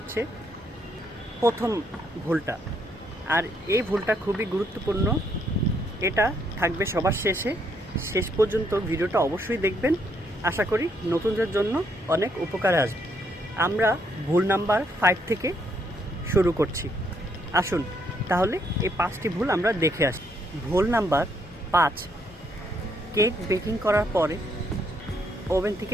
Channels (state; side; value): normal; both; correlation 0.73